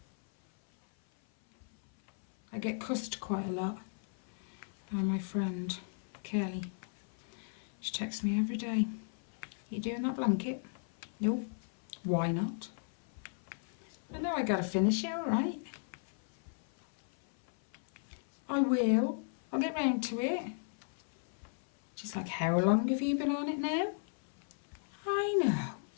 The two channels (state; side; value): silent; right; 54 dB below the other